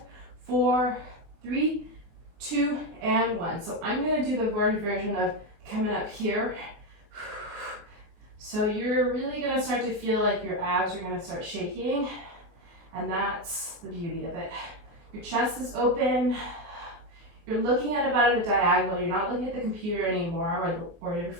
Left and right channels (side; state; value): left; late; 24 ms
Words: 4, 3, 2, and 1. So I'm gonna do the version of coming up here. So you're really gonna start to feel like your abs are gonna start shaking, and that's the beauty of it. Your chest is open. You're looking at a diagonal. You're not looking at the computer anymore or your